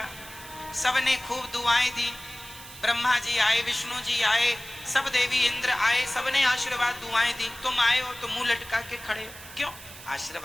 सबने खूब दुआएं दी, ब्रह्मा जी आए, विष्णु जी आए, सब देवी इंद्र आए, सबने आशीर्वाद दुआएं दी, तुम आए हो तो मुंह लटका के खड़े हो, क्यों?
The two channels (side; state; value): right; noise; hiss, 16 dB below the sound